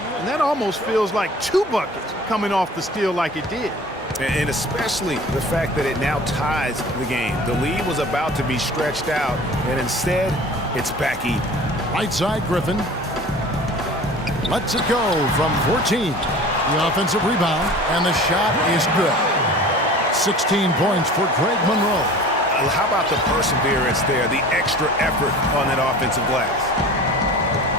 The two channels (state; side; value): normal; both; correlation 0.42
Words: And that almost feels like 2 buckets coming off the steal like it did. And especially the fact that it now ties the game. The lead was about to be stretched out, and instead, it's back even. Right side, Griffin. Lets it go from 14. The offensive rebound, and the shot is good. 16 points for Greg Monroe. How about the perseverance there, the extra effort on that offensive glass?